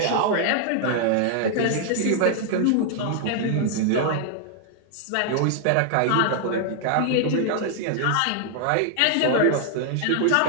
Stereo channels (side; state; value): both; different; correlation 0.00